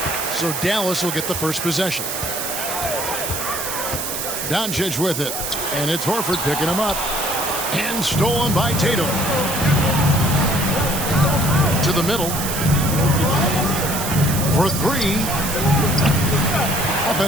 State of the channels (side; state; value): right; noise; hiss, 4 dB below the sound